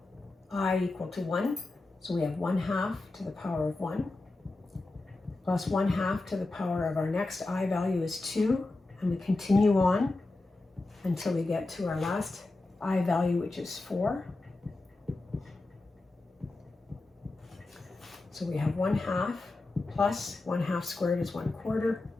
I equal to 1. So we have 1/2 to the power of 1 plus 1/2 to the power of our next I value is 2. And we continue on until we get to our last I value, which is 4. So we have 1/2 plus 1/2 squared is 1/4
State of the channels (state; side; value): quieter; right; 3.1 dB